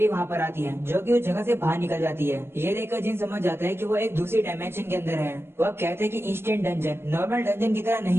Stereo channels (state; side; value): late; left; 0.12 ms